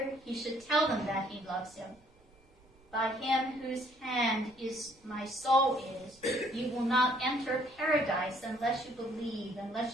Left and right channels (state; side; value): noise; right; rumble, 29 dB below the sound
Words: he should tell them that he loves him. By him whose hand is my soul is, you will not enter paradise unless you believe, and